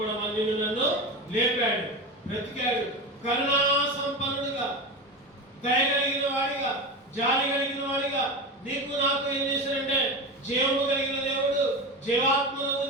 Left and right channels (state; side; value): normal; both; correlation 0.24